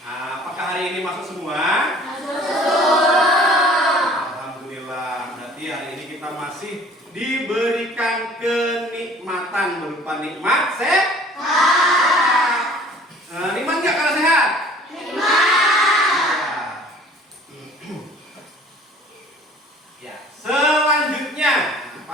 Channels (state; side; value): normal; both; correlation 0.51